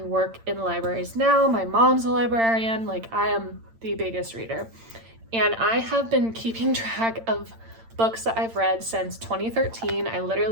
work in libraries now. My mom's a librarian. Like, I am the biggest reader. And I have been keeping track of books that I've read since 2013. I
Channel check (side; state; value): left; late; 8.8 ms